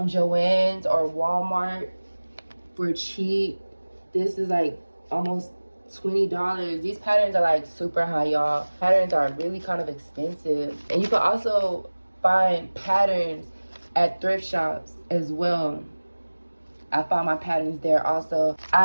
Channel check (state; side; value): inverted; both; correlation -1.00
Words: Joann's or Walmart for cheap. This is like almost $20. These patterns are like super high, y'all. Patterns are really kind of expensive. And you can also find patterns at thrift shops as well. I found my patterns there also.